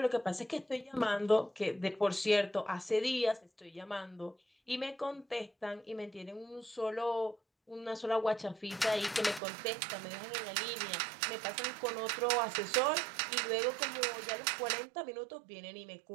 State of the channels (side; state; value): left; drops out; at 9.4 s